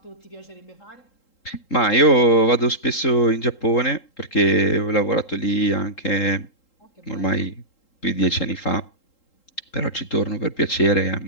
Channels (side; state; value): right; late; 3.8 ms